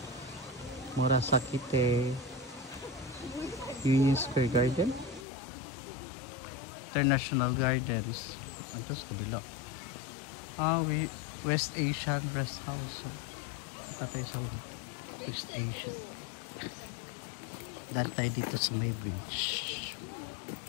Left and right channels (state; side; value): drops out; right; at 5.2 s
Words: Murasakite, Union Square Garden, International Gardens. Ito sa kabila. West Asian Rest House. So, tayo sa West Asia. Dahil tayo dito sa may bridge.